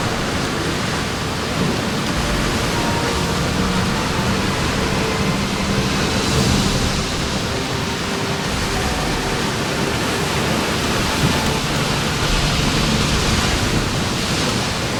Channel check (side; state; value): both; identical; correlation 1.00